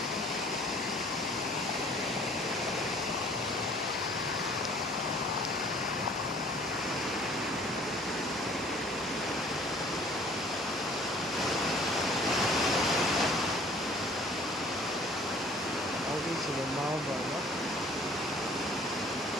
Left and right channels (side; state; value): both; normal; correlation 0.54